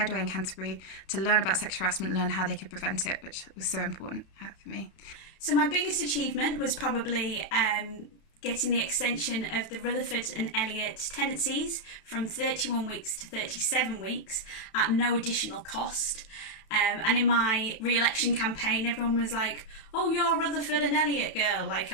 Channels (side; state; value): right; late; 32 ms